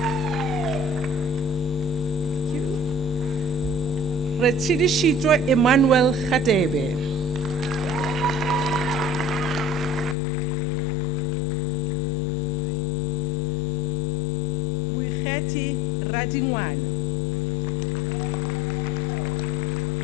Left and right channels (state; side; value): drops out; right; at 10.2 s